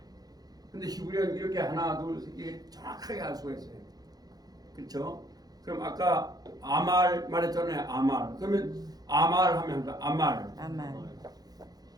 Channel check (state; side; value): late; left; 0.19 ms